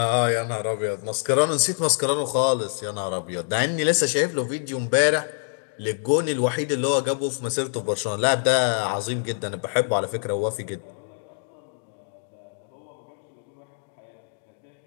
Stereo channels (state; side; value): silent; right; digital silence